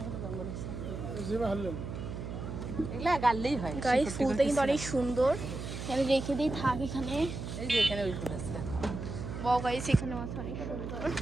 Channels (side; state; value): right; noise; hum, 7 dB below the sound